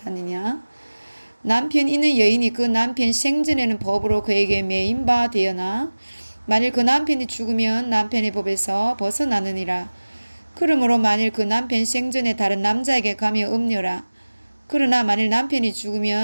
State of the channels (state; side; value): inverted; both; correlation -1.00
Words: 남편 있는 여인이 그 남편 생전에는 법으로 그에게 매인 바 되어나 만일 그 남편이 죽으면 남편의 법에서 벗어나느니라. 그러므로 만일 그 남편 생전에 다른 남자에게 가며 음녀라. 그러나 만일 남편이